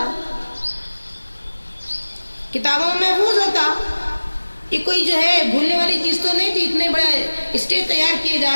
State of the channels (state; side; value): inverted; both; correlation -1.00